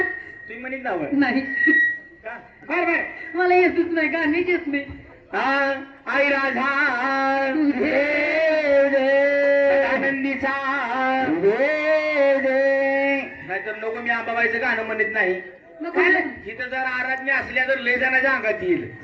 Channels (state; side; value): identical; both; correlation 1.00